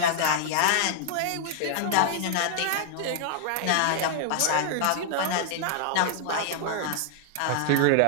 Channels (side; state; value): both; different; correlation 0.00